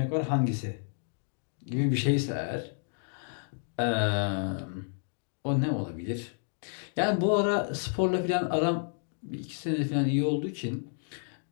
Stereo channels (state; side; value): silent; right; digital silence